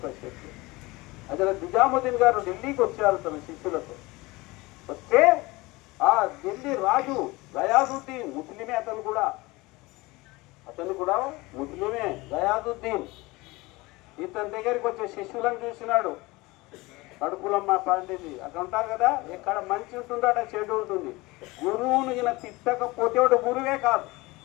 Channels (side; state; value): right; quieter; 22.1 dB